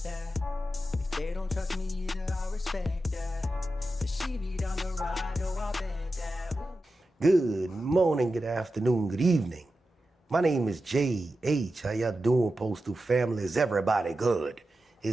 If they don't trust me either, I respect that. If she be down the ride, oh, I bet that. Ooh. Good morning, good afternoon, good evening. My name is J.H. How y'all doing, Postal family? Is everybody good?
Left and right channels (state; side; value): normal; both; correlation 0.91